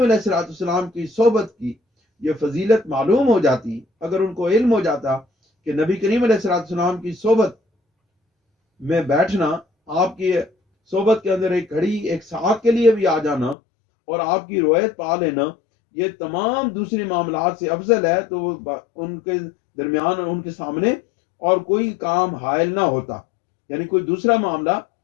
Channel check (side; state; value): right; drops out; at 13.6 s